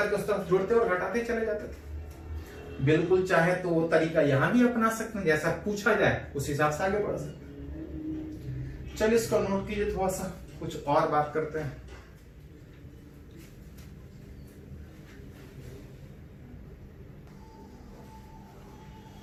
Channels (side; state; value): both; identical; correlation 1.00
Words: उस तरफ जुड़ते और घटाते चले जाते थे। बिल्कुल चाहे तो वो तरीका यहां भी अपना सकते हैं, जैसा पूछा जाए उस हिसाब से आगे बढ़ सकते हैं। चलिए इसको नोट कीजिए, थोड़ा सा कुछ और बात करते हैं।